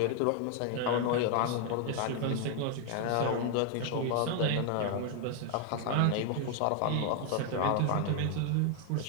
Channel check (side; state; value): both; different; correlation 0.00